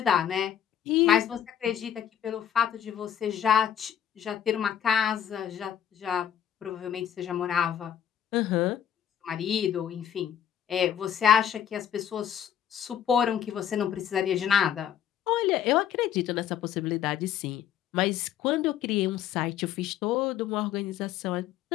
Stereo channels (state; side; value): quieter; right; 9.7 dB